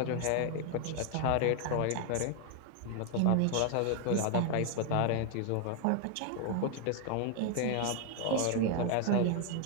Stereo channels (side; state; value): both; different; correlation 0.00